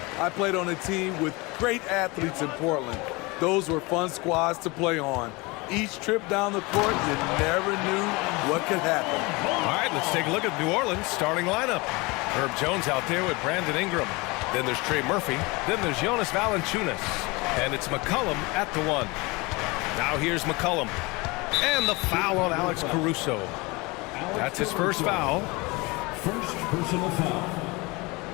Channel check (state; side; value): quieter; right; 25.2 dB